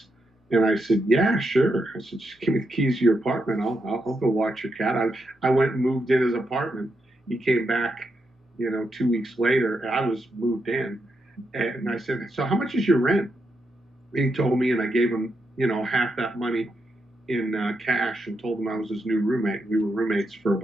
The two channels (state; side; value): normal; both; correlation 0.83